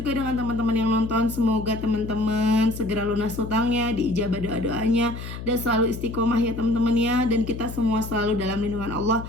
dengan teman-teman yang nonton, semoga teman-teman segera lunas hutangnya, diijabah doa-doanya, dan selalu istiqomah ya teman-teman ya. Dan kita semua selalu dalam lindungan Allah.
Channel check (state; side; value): noise; left; hum, 9 dB below the sound